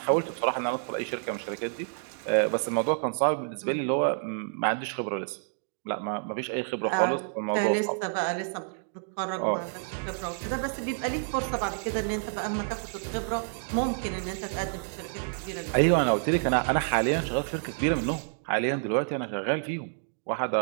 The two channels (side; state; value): left; silent; digital silence